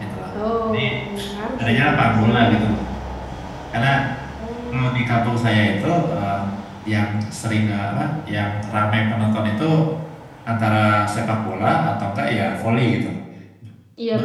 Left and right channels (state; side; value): identical; both; correlation 1.00